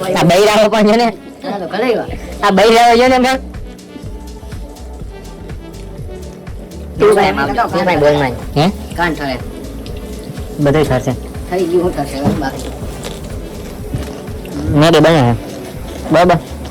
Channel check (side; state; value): both; identical; correlation 1.00